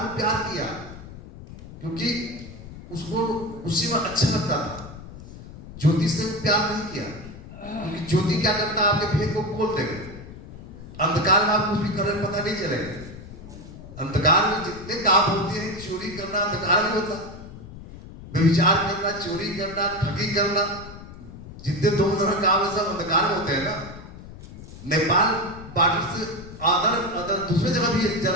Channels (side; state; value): left; noise; rumble, 15 dB below the sound